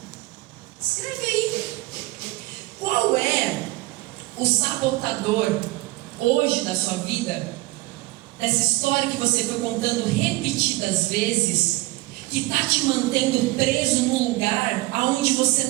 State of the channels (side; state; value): left; quieter; 19.9 dB